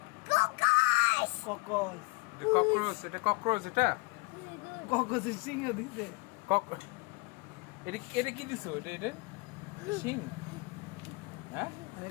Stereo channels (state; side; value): quieter; right; 26.6 dB